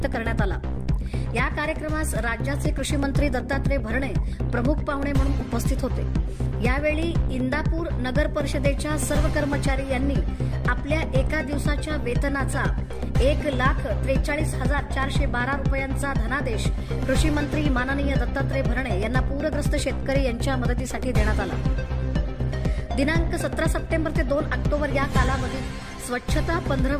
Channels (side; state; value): both; identical; correlation 1.00